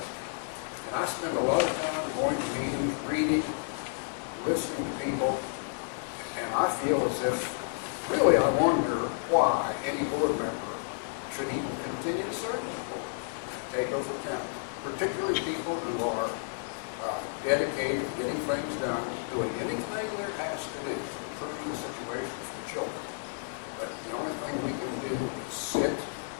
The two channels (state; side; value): silent; right; digital silence